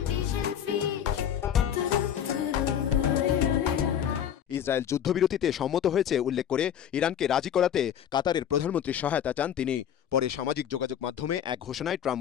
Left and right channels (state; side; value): quieter; right; 9.5 dB